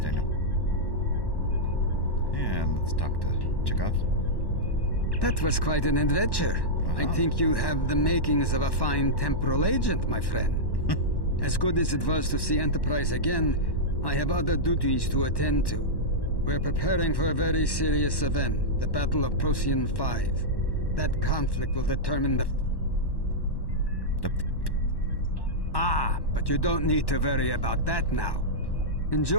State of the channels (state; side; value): late; right; 1.1 ms